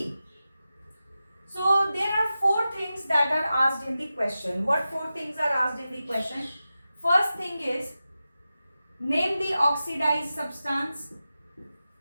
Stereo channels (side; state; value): both; inverted; correlation -0.93